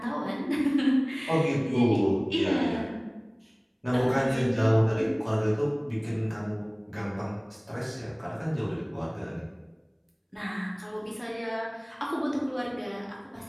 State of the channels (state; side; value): identical; both; correlation 1.00